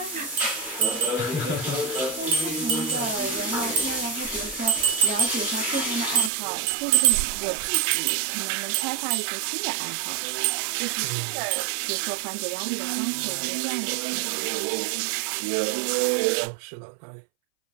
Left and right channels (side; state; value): left; drops out; at 6.3 s